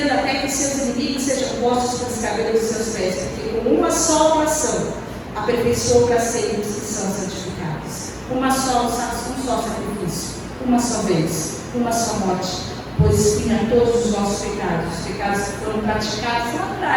até que seus inimigos sejam postos pelos cabelos dos seus pés, porque com uma só oração aperfeiçoou para sempre os que são santificados. Um só sacrifício, uma só vez, uma só morte, pois expia todos os nossos pecados, os pecados que foram praticados lá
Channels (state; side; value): identical; both; correlation 1.00